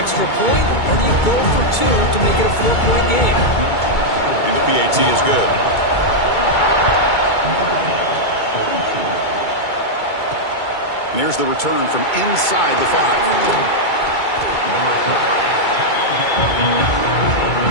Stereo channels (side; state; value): right; late; 2.2 ms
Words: point, or do you go for 2 to make it a 4-point game? And the PAT is good. And here's the return from inside the 5.